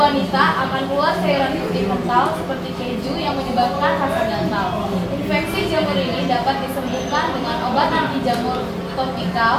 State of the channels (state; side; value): identical; both; correlation 1.00